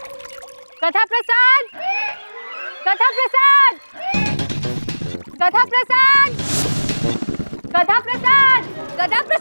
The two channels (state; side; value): inverted; both; correlation -1.00